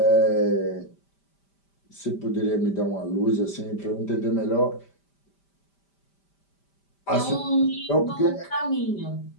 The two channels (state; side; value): late; right; 5.1 ms